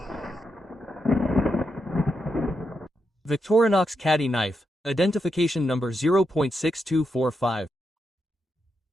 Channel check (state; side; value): normal; both; correlation 0.84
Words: Victorinox Caddy knife, identification number 0.6245.